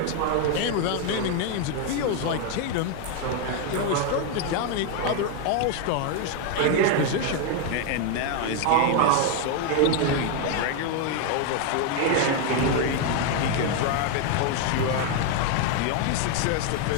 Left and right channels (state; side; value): different; both; correlation 0.01